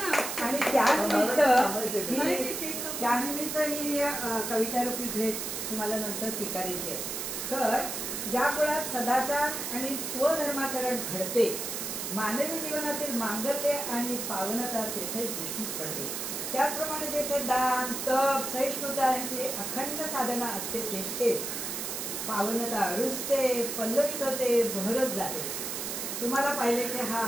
आणि त्यानिमित्त ही कवितारूपी भेट तुम्हाला नंतर स्वीकारायची आहे। सर, ज्या कुळात सदाचार आणि स्वधर्माचरण घडते, मानवी जीवनातील मांगल्य आणि पावनता तेथे दृष्टीस पडते। त्याचप्रमाणे जेथे दान, तप, सहिष्णुता यांची अखंड साधना असते, तेथे पावनता रुजते, पल्लवित होते, बहरत जाते। तुम्हाला पाहिले की हा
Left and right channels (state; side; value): noise; right; hiss, 4 dB below the sound